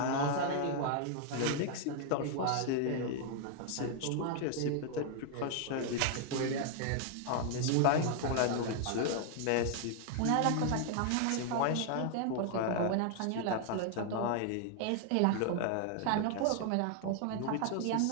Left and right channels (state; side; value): different; both; correlation 0.00